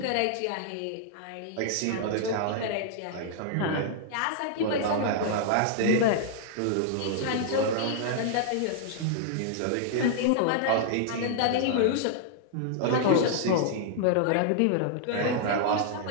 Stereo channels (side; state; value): both; different; correlation -0.01